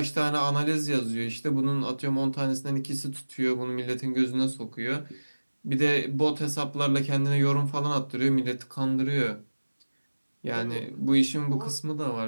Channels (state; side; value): inverted; both; correlation -1.00